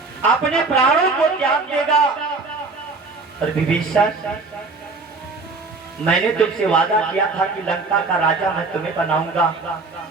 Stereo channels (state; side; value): quieter; left; 3.9 dB